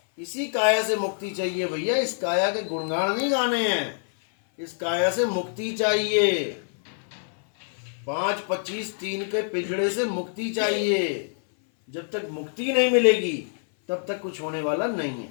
इसी काया से मुक्ति चाहिए भैया। इस काया के गुणगान नहीं गाने हैं, इस काया से मुक्ति चाहिए। 5 25 3 के पिंजड़े से मुक्ति चाहिए। जब तक मुक्ति नहीं मिलेगी तब तक कुछ होने वाला नहीं है।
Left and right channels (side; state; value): right; silent; 59 dB below the other